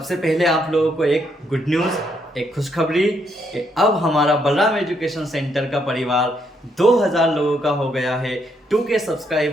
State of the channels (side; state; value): both; normal; correlation 0.74